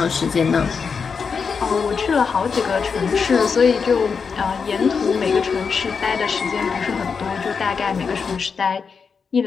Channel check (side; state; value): right; quieter; 5.7 dB